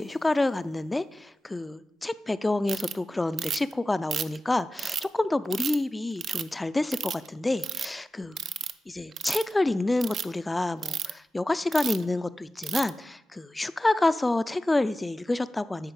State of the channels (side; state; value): both; normal; correlation 0.94